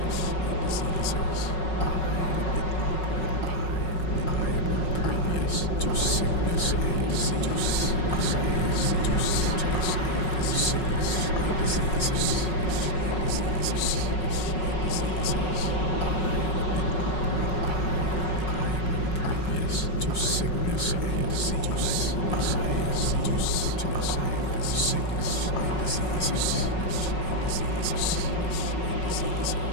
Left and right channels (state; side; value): late; right; 5.4 ms